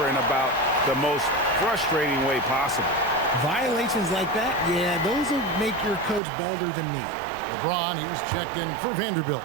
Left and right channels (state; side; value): drops out; left; at 6.2 s